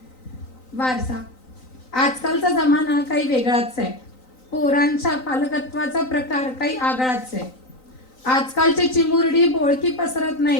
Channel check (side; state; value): right; late; 3.9 ms